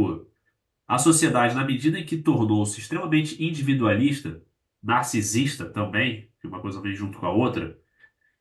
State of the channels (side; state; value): both; identical; correlation 1.00